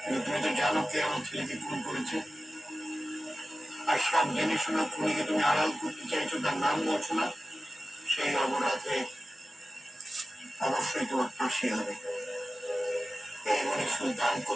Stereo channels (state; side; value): normal; both; correlation 0.95